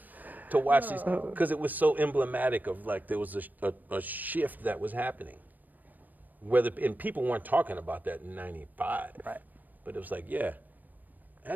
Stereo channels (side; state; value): left; late; 0.086 ms